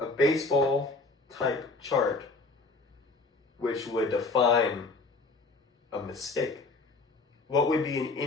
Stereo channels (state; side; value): quieter; right; 3.6 dB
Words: baseball type chart which would define a mistake. What would be an